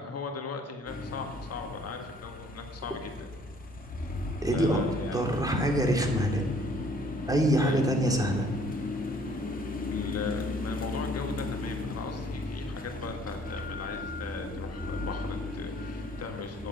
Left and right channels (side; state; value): both; normal; correlation 0.59